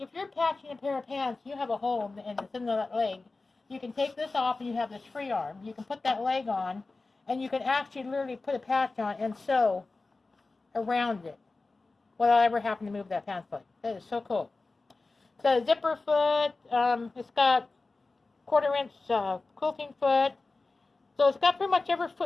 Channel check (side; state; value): right; quieter; 3.6 dB